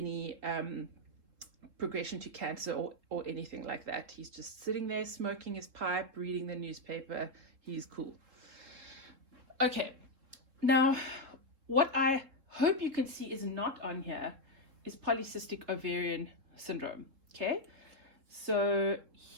progression to cancer or anything like that. He's just sitting there smoking his pipe, reading the newspaper. He's cool. Okay, now what I hope you can see is not on here is polycystic ovarian syndrome. Okay, so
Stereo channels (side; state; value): left; late; 3.7 ms